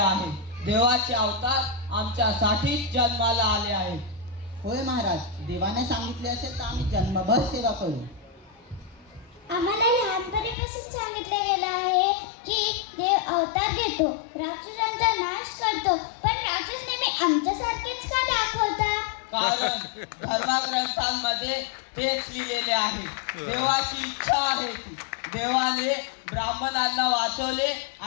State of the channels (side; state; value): right; drops out; at 10.6 s